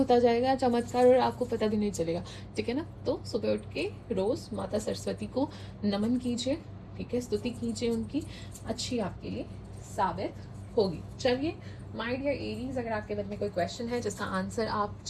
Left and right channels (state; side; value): identical; both; correlation 1.00